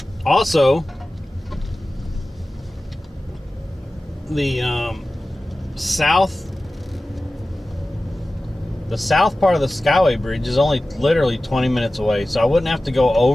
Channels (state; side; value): normal; both; correlation 0.96